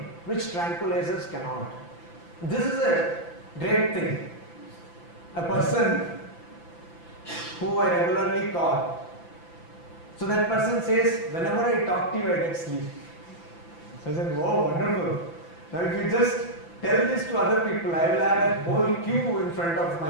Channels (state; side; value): late; right; 5.9 ms